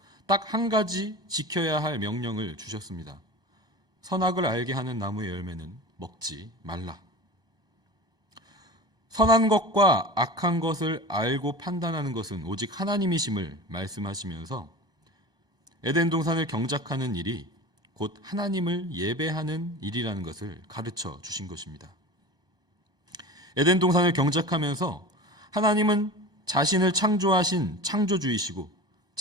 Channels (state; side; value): late; left; 1.2 ms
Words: 딱 한 가지 지켜야 할 명령을 주셨습니다. 선악을 알게 하는 나무의 열매는 먹지 말라. 선한 것과 악한 것을 알고 판단하는 것은 오직 하나님이심을 말씀하시면서 에덴 동산을 경작하는 일이 곧 하나님을 예배하는 일이라는 것을 가르쳐 주신 것입니다. 에덴 동산을 경작하면서 하나님은 자신을 창조하신 창조주이시고